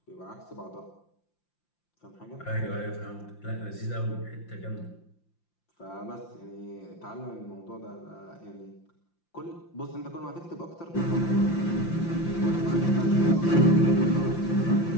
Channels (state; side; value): late; right; 5.8 ms